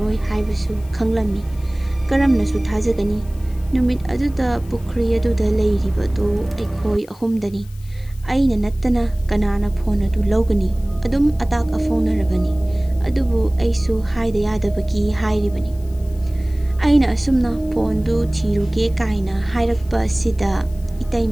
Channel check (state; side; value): noise; left; hiss, 26 dB below the sound